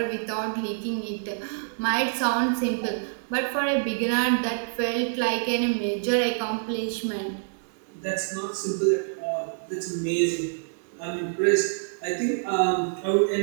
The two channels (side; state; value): left; silent; digital silence